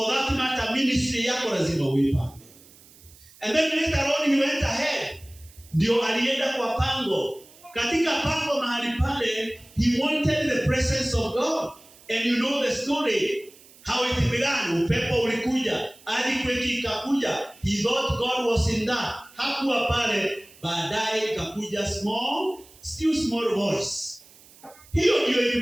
that matter, ministry yako lazima uipange. And then later on he went ahead. Ndio alienda kwa Pango. Katika Pango mahali pale, he wanted the presence of God. And you know the story. How it began. Upepo ulikuja. Earthquake ikakuja. He thought God was in that. Hakuwa pale. Baadaye ikakuja still small voice. Hiyo ndio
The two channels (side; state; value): right; noise; hiss, 24 dB below the sound